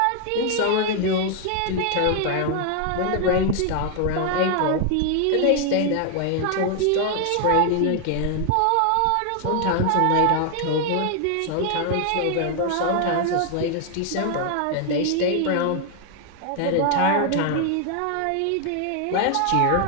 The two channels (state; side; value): different; both; correlation 0.00